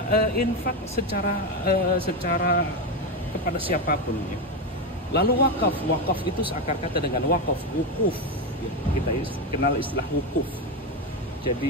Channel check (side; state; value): both; normal; correlation 0.12